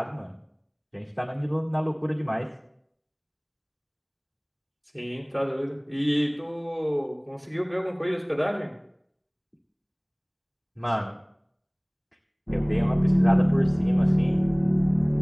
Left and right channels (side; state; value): both; identical; correlation 1.00